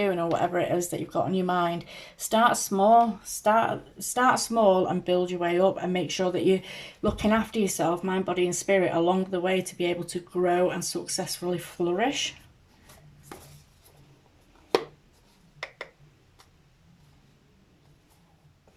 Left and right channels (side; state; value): both; identical; correlation 1.00